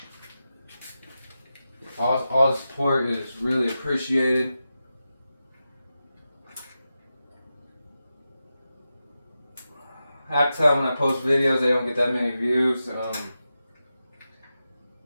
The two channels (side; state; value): both; inverted; correlation -0.91